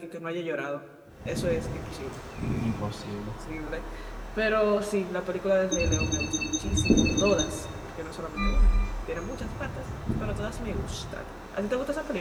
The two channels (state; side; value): identical; both; correlation 1.00